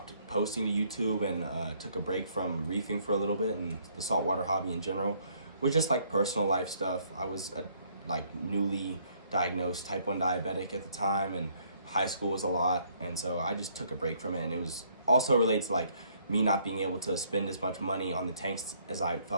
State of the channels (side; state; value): both; inverted; correlation -0.66